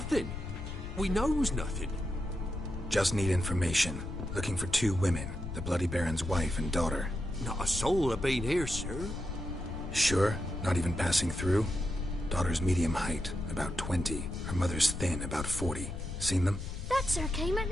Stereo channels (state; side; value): noise; left; rumble, 7 dB below the sound